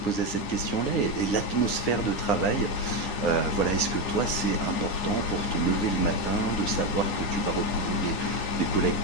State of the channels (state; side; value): late; right; 9.7 ms